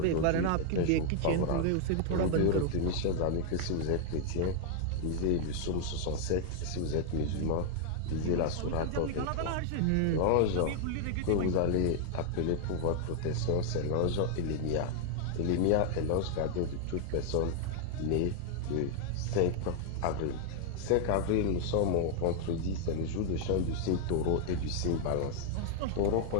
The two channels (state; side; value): different; both; correlation 0.00